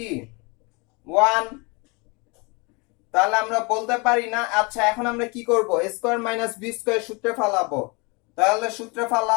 1। তাহলে আমরা বলতে পারি না। আচ্ছা এখন আমরা কি করব, স্কয়ার মাইনাস বি স্কয়ার সূত্রে ফালাবো। তাহলে সূত্রে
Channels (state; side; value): quieter; right; 29.3 dB